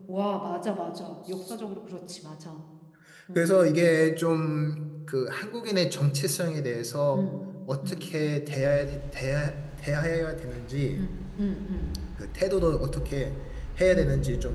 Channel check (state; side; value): identical; both; correlation 1.00